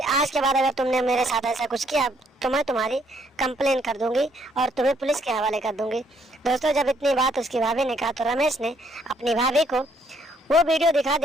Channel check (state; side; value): normal; both; correlation 0.69